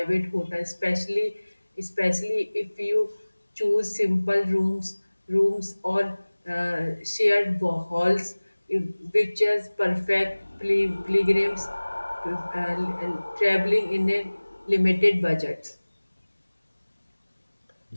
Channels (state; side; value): inverted; both; correlation -1.00